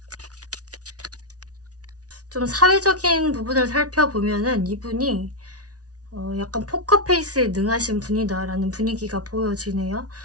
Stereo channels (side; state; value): left; late; 0.68 ms